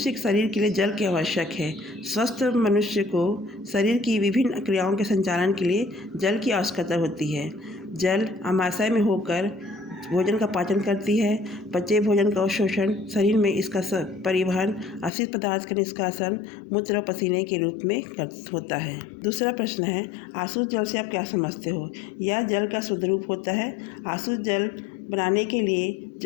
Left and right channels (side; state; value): right; drops out; at 15.1 s